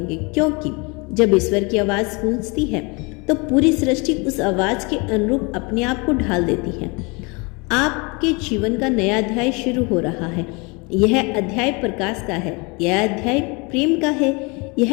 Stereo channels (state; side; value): quieter; right; 29.1 dB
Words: क्योंकि जब ईश्वर की आवाज़ गूंजती है तो पूरी सृष्टि उस आवाज़ के अनुरूप अपने आप को ढाल देती है। आपके जीवन का नया अध्याय शुरू हो रहा है। यह अध्याय प्रकाश का है, यह अध्याय प्रेम का है,